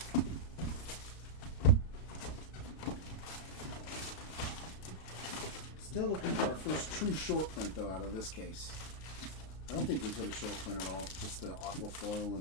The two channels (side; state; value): right; late; 33 ms